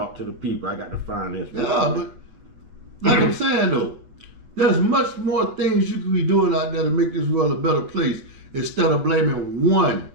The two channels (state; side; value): late; left; 7.9 ms